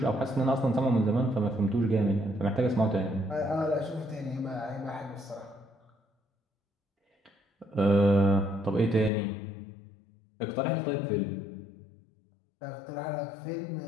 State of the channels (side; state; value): right; drops out; at 9.1 s